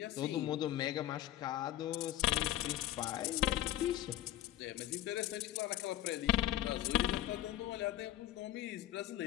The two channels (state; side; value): quieter; right; 13.6 dB